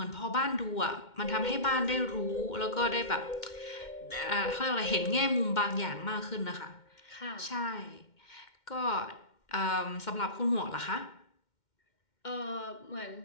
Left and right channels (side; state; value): right; late; 2.1 ms